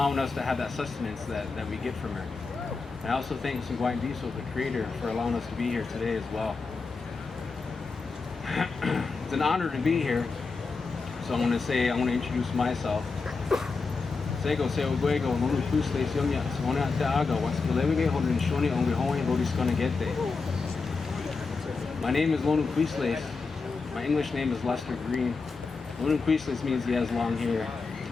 us to have that sustenance that we get from her. And I also thank Sungwain Diesel, the creator, for allowing us to be here today as well. It's an honor to be here. So I want to introduce myself. Sego se oguego lulu kusle sionya sona taaga waskilewige hodin shoni onge hoy lodis gonna get there. My name is Lonu Quisles. My English name is Lester Green. Lonu Quisles means he has long hair.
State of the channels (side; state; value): right; quieter; 4.4 dB